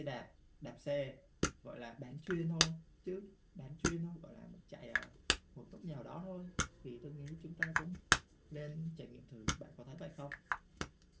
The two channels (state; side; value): identical; both; correlation 1.00